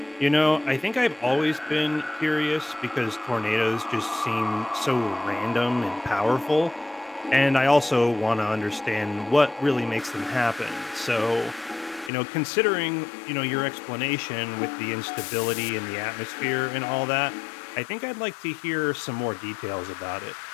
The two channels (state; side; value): drops out; right; at 12.1 s